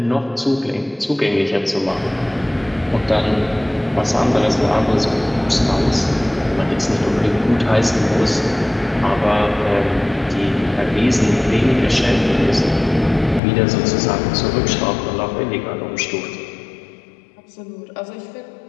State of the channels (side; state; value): right; drops out; at 13.4 s